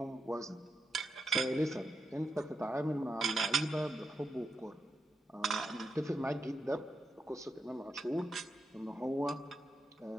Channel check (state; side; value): normal; both; correlation 0.86